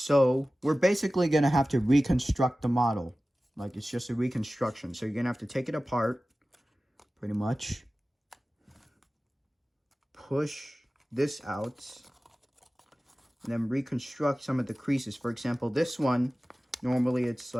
we're basically going to have to reconstruct the model. Like, it's just a reconstruction. So, you're going to have to take it apart, pretty much. Push this out. And then reconstruct some of the creases. For example, this one, normally it's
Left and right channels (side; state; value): both; normal; correlation 0.96